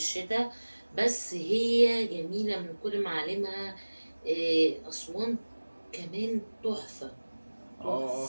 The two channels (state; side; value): inverted; both; correlation -1.00